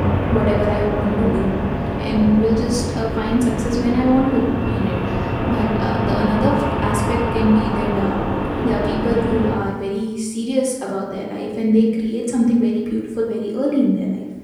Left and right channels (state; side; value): identical; both; correlation 1.00